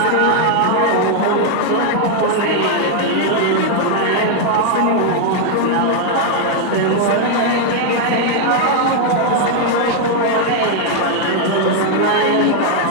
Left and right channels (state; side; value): different; both; correlation 0.00